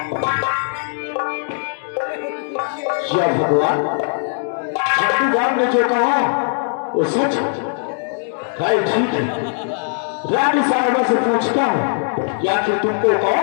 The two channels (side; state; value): right; silent; digital silence